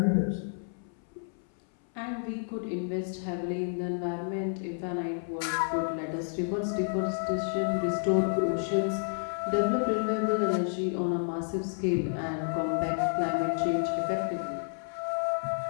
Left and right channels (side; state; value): right; silent; 58 dB below the other